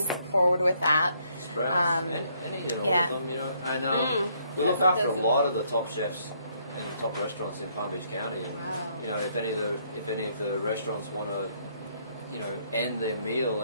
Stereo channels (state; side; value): inverted; both; correlation -0.69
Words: forward with that. Sprouts, any and all of them, And we look after a lot of the top chefs and the top restaurants in Palm Beach County, and if any of the restaurants want to, end their meal